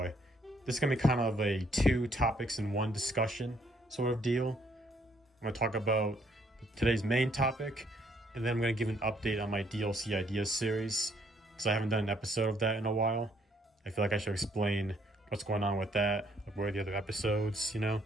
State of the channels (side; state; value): both; normal; correlation 0.67